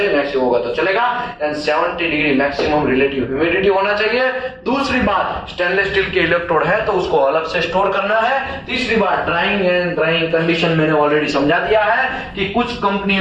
मैक्सिमम होगा तो चलेगा, and 70 degree maximum relative humidity होना चाहिए। दूसरी बात, स्टेनलेस स्टील के इलेक्ट्रोड है तो उसको अलग से स्टोर करना है। तीसरी बात, ड्राइंग एंड ड्राइंग कंडीशन मैंने ऑलरेडी समझा दिया है कि कुछ कंपनी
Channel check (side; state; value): both; identical; correlation 1.00